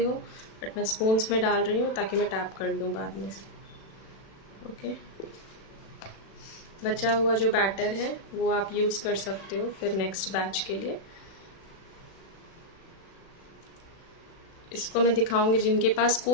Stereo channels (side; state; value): right; late; 36 ms